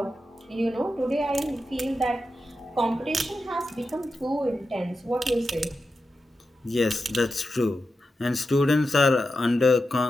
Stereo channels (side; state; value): both; normal; correlation 0.90